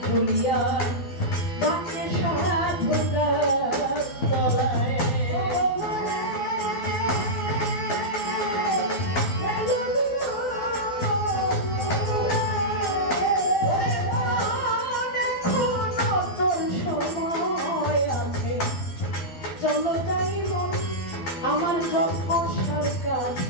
তুলিয়া বাঁকে সাধু গাছ তলায় সময় আছে চলো যাই মন আমার জন্মসার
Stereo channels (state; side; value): late; right; 12 ms